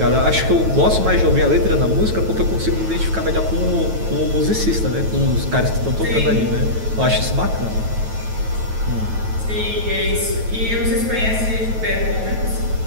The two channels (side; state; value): left; late; 9.2 ms